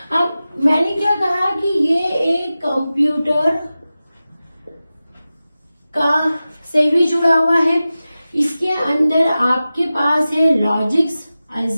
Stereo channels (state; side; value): inverted; both; correlation -0.95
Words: अब मैंने क्या कहा कि ये एक कंप्यूटर का से भी जुड़ा हुआ है। इसके अंदर आपके पास है लॉजिक्स,